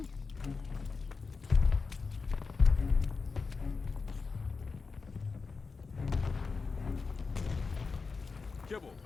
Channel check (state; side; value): quieter; right; 4.6 dB